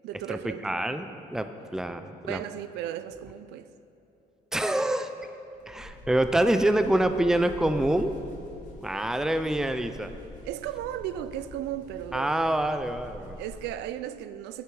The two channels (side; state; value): both; normal; correlation 0.86